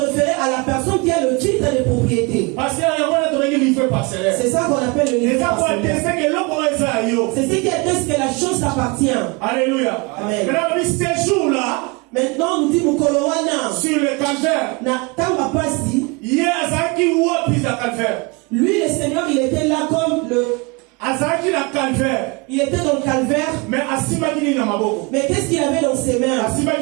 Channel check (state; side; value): quieter; left; 28.0 dB